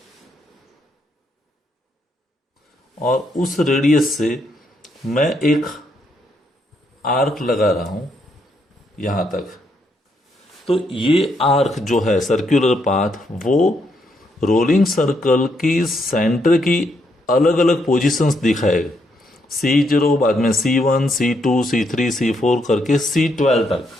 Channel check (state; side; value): normal; both; correlation 0.76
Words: और उस रेडियस से मैं एक आर्क लगा रहा हूं यहां तक। तो ये आर्क जो है सर्कुलर पाथ, वो रोलिंग सर्कल की सेंटर की अलग अलग पोजीशंस दिखाएगा। C0, बाद में C1, C2, C3, C4 करके C12 तक,